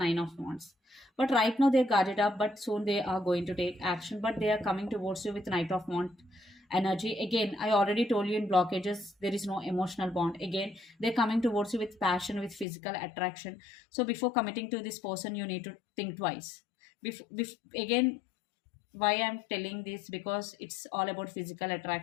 of Wands. But right now they're guarded up, but soon they are going to take action. But they are coming towards you with Knight of Wands energy. Again, I already told you in blockages, there is no emotional bond. Again, they're coming towards you with passion, with physical attraction. So before committing to this person, you need to think twice. Again, why I'm telling this, because it's all about physical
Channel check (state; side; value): drops out; right; at 12.7 s